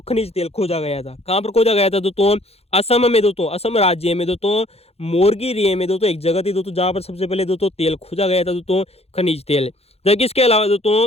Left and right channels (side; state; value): right; late; 0.29 ms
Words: खनिज तेल खोजा गया था। कहाँ पर खोजा गया था दोस्तों? असम में दोस्तों, असम राज्य में दोस्तों मोरगेरिये में दोस्तों एक जगह थी दोस्तों जहाँ पर सबसे पहले दोस्तों तेल खोजा गया था दोस्तों, खनिज तेल। जबकि इसके अलावा